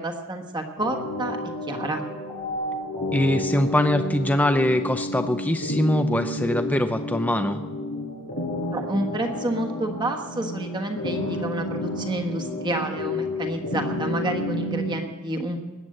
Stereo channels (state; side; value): normal; both; correlation 0.65